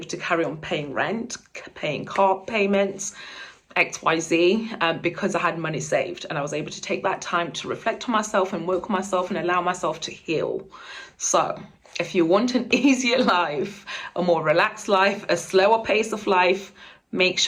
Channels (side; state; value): both; identical; correlation 1.00